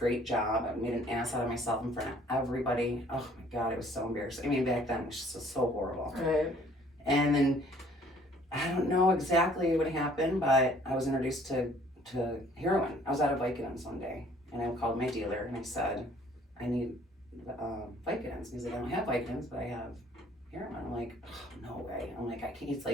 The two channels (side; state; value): both; normal; correlation 0.58